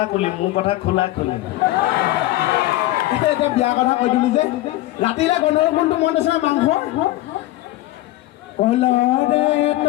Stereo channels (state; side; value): quieter; right; 16.7 dB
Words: কুলি মোৰ কথা খোলা খুলি এতিয়া বিয়া কথা কৈ দিলো যে ৰাতিলে গন্ধৰ কোনটো মন আছে মাংস কলৰে